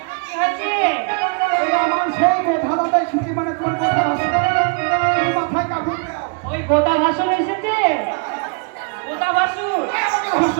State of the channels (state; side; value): quieter; left; 34.9 dB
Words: গোদা ভাসুর এসেছে, গোদা ভাসুর।